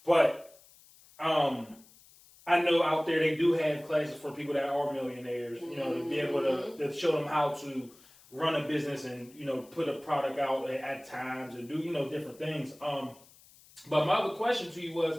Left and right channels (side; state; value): left; noise; hiss, 25 dB below the sound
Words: But I know out there they do have classes for people that are millionaires. To be able to show them how to run a business and put a product out at times and do different things. But my other question to you was,